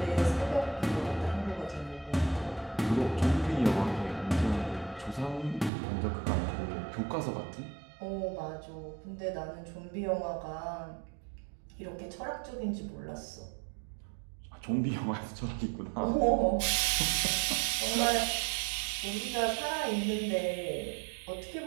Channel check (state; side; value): drops out; left; at 5.7 s